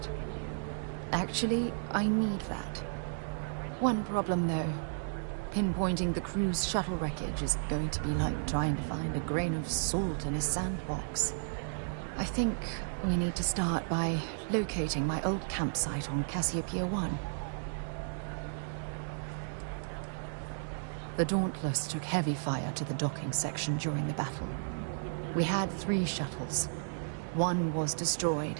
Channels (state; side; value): silent; left; 55 dB below the other